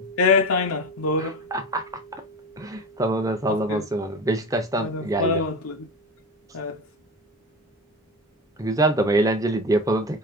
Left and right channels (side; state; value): both; normal; correlation 0.26